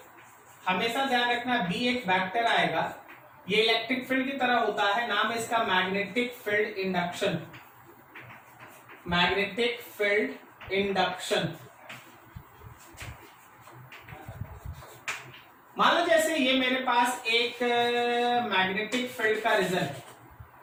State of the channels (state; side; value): identical; both; correlation 1.00